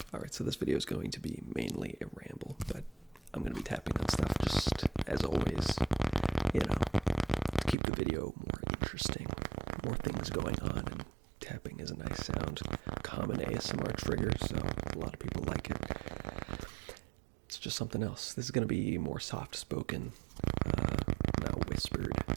Alright, so this video is going to be mainly a ramble, but I'm going to be tapping on stuff just as always, to keep the video more interesting, more things going on, and tapping is a nice sound, common ASMR trigger, so a lot of people like it. It's just something else. This is going to be more soft-spoken, not whispered,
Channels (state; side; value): drops out; left; at 7.8 s